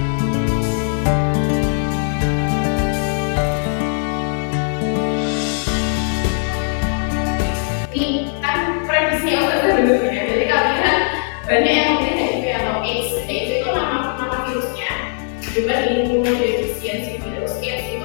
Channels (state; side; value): silent; right; digital silence